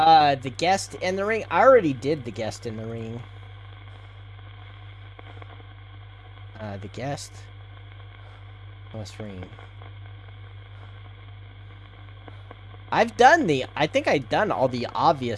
The guest in the ring? I already did the guest in the ring. The guest plus ring. I think I've done all the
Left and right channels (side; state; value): both; identical; correlation 1.00